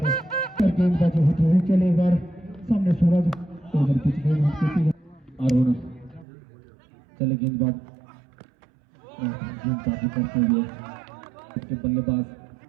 पर गेंदबाजी होती हुई, चले एक बार सामने सूरज, ओवर पिच गेंद अरुण, चले गेंदबाज गेंदबाजी करते हुए के बल्लेबाज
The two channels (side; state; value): left; drops out; at 6.2 s